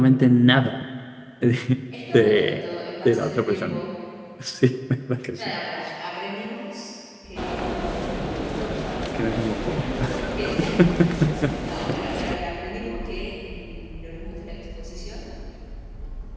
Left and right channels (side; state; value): both; identical; correlation 1.00